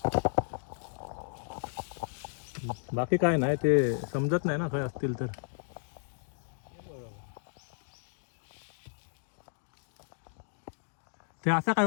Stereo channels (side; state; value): right; silent; digital silence